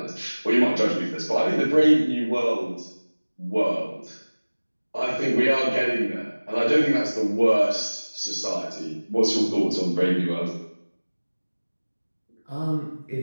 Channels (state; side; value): inverted; both; correlation -1.00